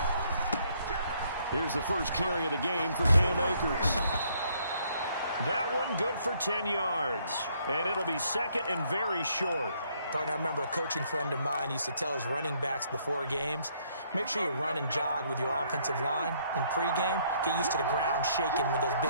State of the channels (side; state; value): both; inverted; correlation -0.68